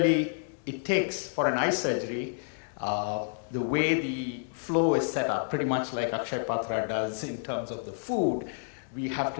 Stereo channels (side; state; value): right; silent; digital silence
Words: it takes, for an eye surgery, The way the flow is set up, pretty much like Akshay Patra does in terms of the food, we have to